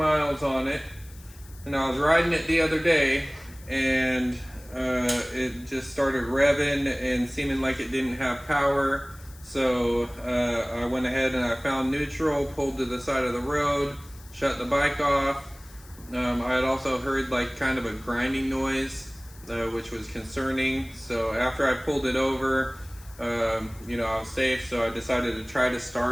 on it, and I was riding it the other day, and it just started revving and seeming like it didn't have power. So I went ahead and I found neutral, pulled to the side of the road, shut the bike off. I had also heard like kind of a grinding noise, which was concerning. So after I pulled it over, I was safe, so I decided to try to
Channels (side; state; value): left; noise; hiss, 23 dB below the sound